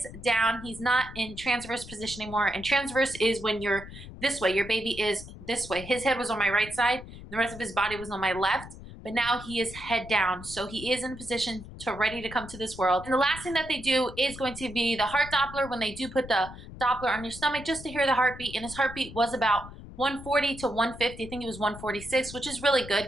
down. He's not in transverse position anymore. And transverse is when you're this way. Your baby is this way. His head was on my right side. The rest of his body was on my left. But now he is head down. So he is in a position to ready to come to this world. And the last thing that they do is going to be the heart Doppler, when they do put the Doppler on your stomach just to hear the heartbeat. And his heartbeat was about 140 to 150. I think it was 146, which is really good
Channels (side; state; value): left; noise; rumble, 14 dB below the sound